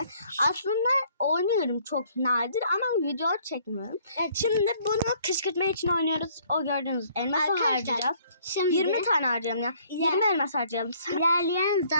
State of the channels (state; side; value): inverted; both; correlation -0.61